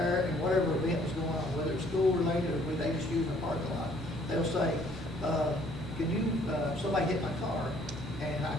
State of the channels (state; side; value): normal; both; correlation 0.61